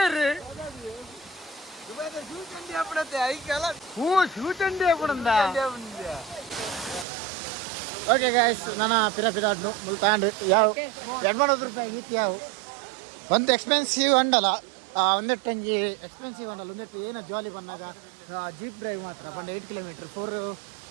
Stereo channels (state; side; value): drops out; left; at 7.1 s